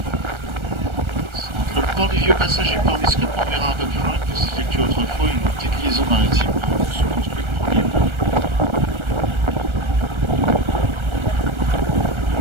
Entre le port du Vieux Passage et Port Biscuit, on verra un peu plus loin que s'effectue autrefois une petite liaison maritime se construite premièrement.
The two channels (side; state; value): left; late; 1.3 ms